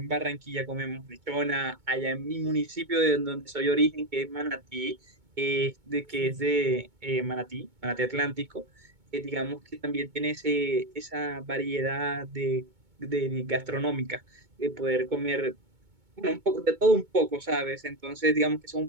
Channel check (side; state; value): left; late; 2.2 ms